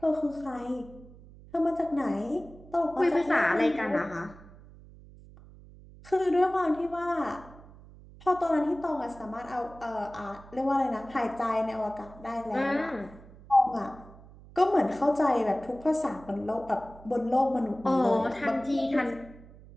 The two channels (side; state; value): right; noise; hum, 20 dB below the sound